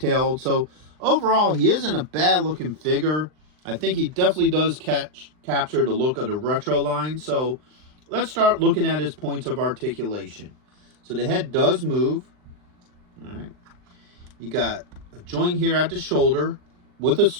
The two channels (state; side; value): late; left; 39 ms